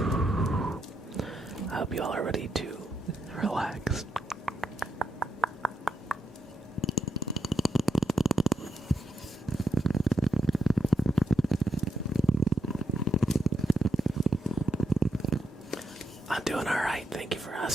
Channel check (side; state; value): both; normal; correlation 0.82